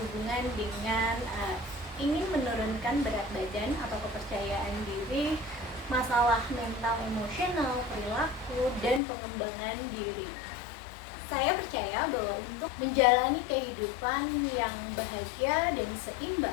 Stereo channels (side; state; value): right; drops out; at 9.0 s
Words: dengan ingin menurunkan berat badan atau kepercayaan diri, masalah mental emosional, perilaku, dan pengembangan diri. Saya percaya bahwa untuk menjalani kehidupan yang bahagia dan